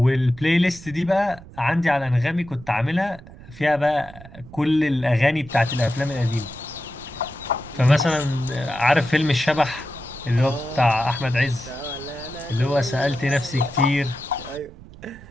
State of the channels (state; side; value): noise; right; rumble, 18 dB below the sound